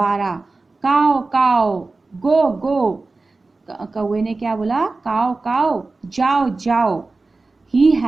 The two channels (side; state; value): left; quieter; 3.5 dB